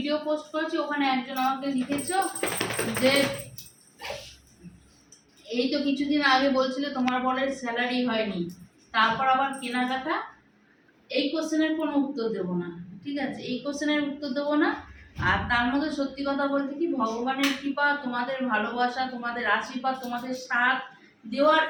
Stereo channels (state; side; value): identical; both; correlation 1.00